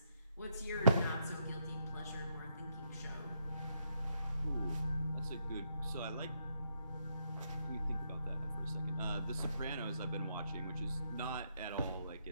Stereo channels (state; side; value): inverted; both; correlation -0.76